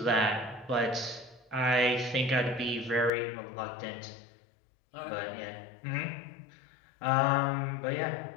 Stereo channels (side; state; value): right; drops out; at 3.1 s